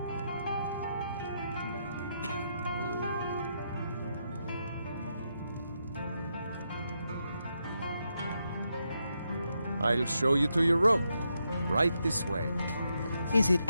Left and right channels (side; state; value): both; inverted; correlation -0.82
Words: I'll show you to your room. Right this way. Is it